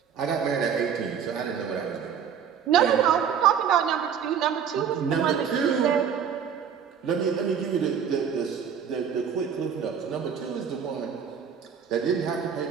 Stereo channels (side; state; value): left; quieter; 7.7 dB